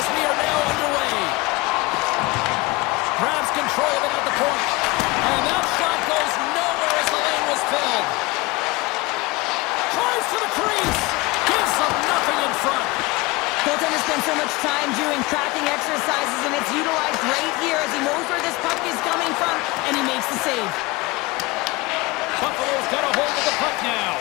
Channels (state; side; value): quieter; right; 22.8 dB